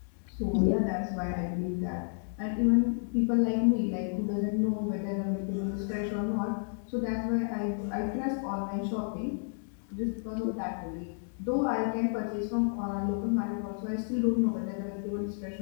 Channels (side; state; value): right; silent; digital silence